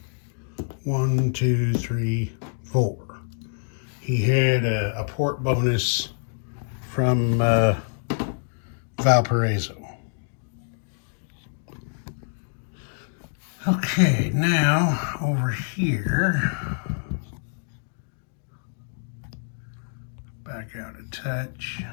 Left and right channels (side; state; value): right; silent; digital silence